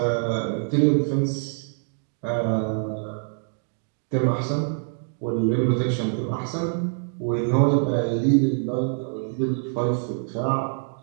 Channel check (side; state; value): left; silent; 62 dB below the other